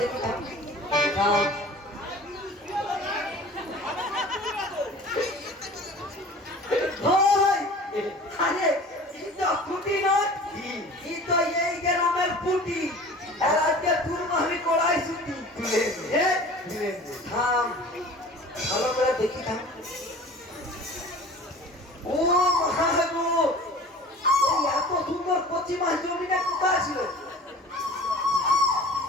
দেখি, থাম আরে ফুটি নয়, তো এই গ্রামের ফুটি, আর আজকে তুলবো আমি কড়াই ছুটি। থাম ভালো করে দেখি, থাম। ও মহাগো, এত সুন্দর কচি মাছ জমিটা কোথায় ছিল?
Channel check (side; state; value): both; normal; correlation 0.43